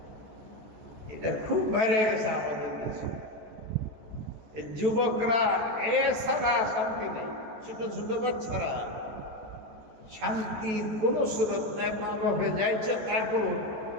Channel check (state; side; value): late; left; 14 ms